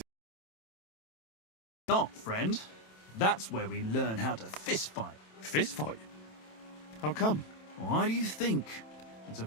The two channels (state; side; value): late; right; 27 ms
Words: Not, friend. That's where we learn how to fist fight. Fist fight? How come? Why do you think? It's a